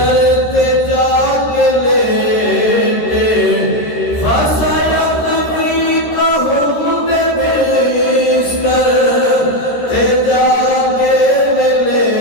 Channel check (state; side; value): late; right; 13 ms